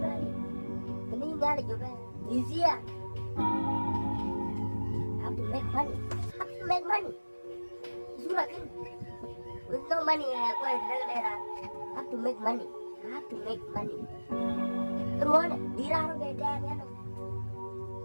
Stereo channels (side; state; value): both; inverted; correlation -1.00